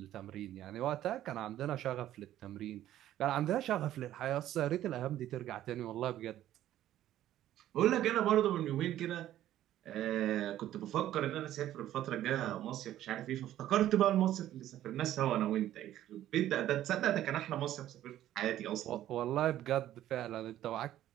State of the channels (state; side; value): quieter; left; 12.8 dB